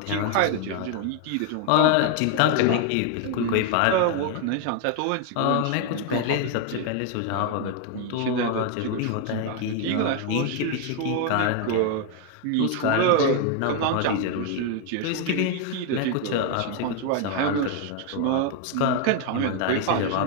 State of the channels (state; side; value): different; both; correlation 0.01